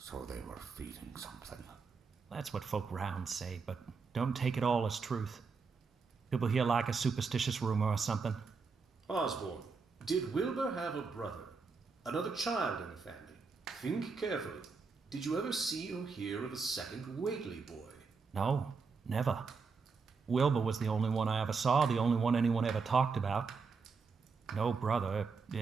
they were feeding something. That's what folk round say, but don't take it all as truth. People hear like a superstitious rumor or something. Osborne, did Wilbur have a brother? Another child in the family? Think carefully. Did you ever see or hear of a second Whately boy? No, never. Wilbur was the only one I ever saw, the only one anyone ever talked about. No brother.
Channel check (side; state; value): left; quieter; 4.9 dB